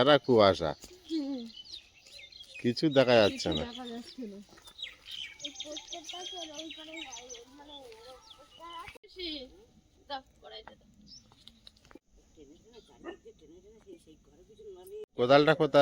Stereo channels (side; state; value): both; identical; correlation 1.00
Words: কুয়াশা, কিছু দেখা যাচ্ছে না। কোদালটা